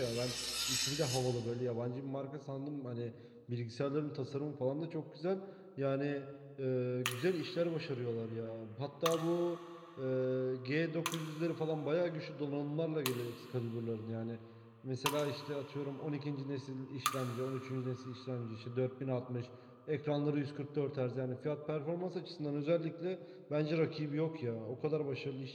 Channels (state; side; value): identical; both; correlation 1.00